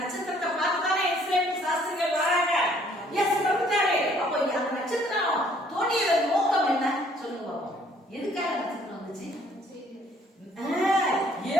நட்சத்திரத்தை பார்த்துதானே இஸ்ரேல் சாஸ்திரிகள் வராங்க. இயேசு பிறந்தாரு. அப்போ அந்த நட்சத்திரம் தோன்றியதன் நோக்கம் என்ன சொல்லுங்க பாப்போம். எதுக்காக நட்சத்திரம் வந்துச்சு?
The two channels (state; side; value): normal; both; correlation 0.61